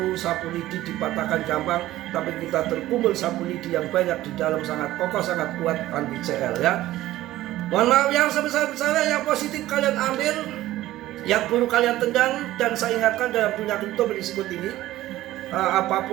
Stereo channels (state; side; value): quieter; left; 15.4 dB